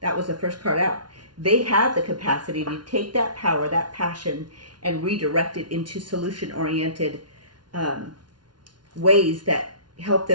That was the first card out. They have the capacity to take that power, that passion, and redirect it into solution-oriented ways that help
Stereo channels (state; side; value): late; left; 0.70 ms